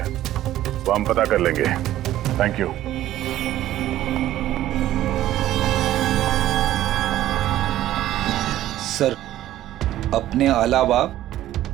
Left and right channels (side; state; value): left; quieter; 13.6 dB